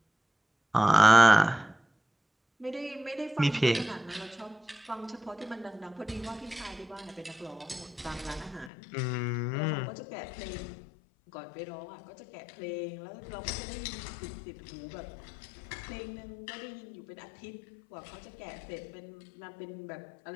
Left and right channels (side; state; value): right; drops out; at 8.7 s